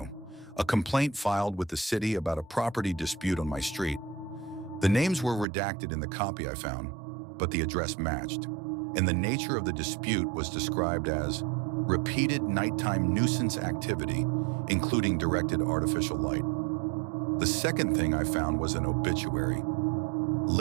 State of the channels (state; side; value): drops out; left; at 5.5 s